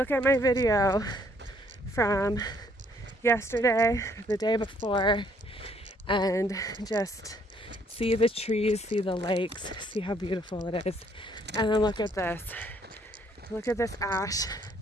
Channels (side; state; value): both; normal; correlation 0.66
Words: at my video from yesterday, the day before, and just see the trees, see the lakes, see how beautiful it is. And then look at this. Look at this ash.